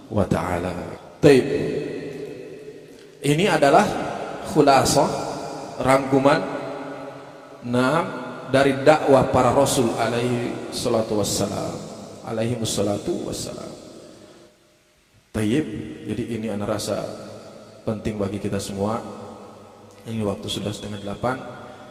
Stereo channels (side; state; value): both; identical; correlation 1.00